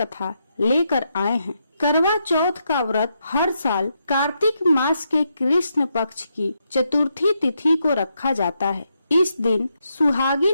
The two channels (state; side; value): inverted; both; correlation -0.81